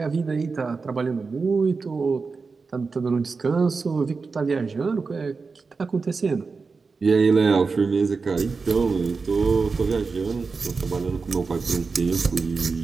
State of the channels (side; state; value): left; quieter; 4.5 dB